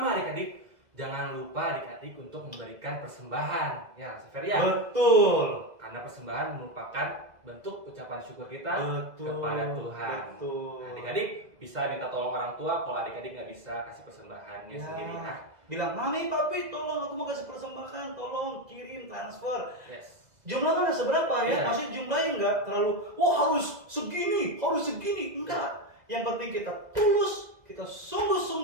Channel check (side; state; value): left; late; 2.0 ms